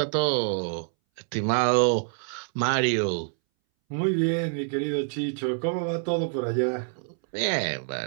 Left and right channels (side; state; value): left; silent; 60 dB below the other